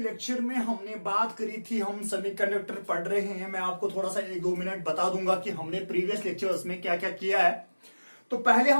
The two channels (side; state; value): both; inverted; correlation -1.00